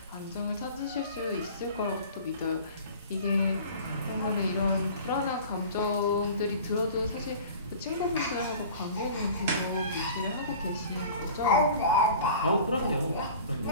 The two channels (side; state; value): both; inverted; correlation -0.42